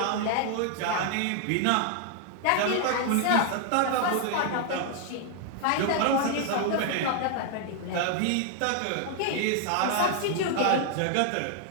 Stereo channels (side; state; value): both; different; correlation 0.00